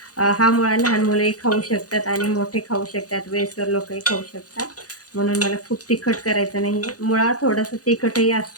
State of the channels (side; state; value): right; late; 0.67 ms